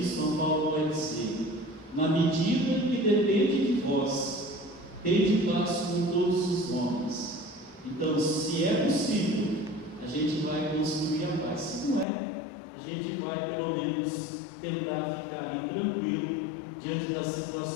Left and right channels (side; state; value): right; drops out; at 12.1 s